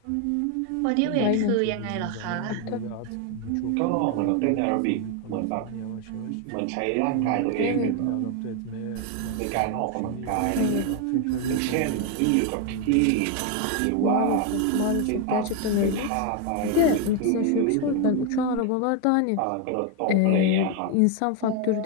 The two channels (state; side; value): different; both; correlation 0.01